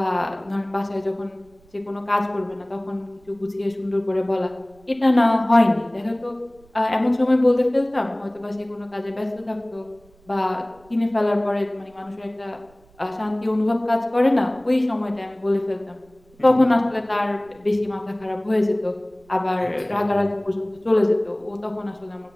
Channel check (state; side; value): noise; right; rumble, 30 dB below the sound